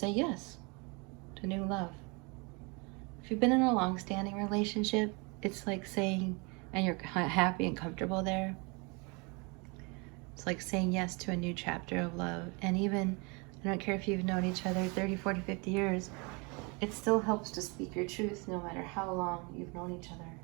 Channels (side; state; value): left; quieter; 30.1 dB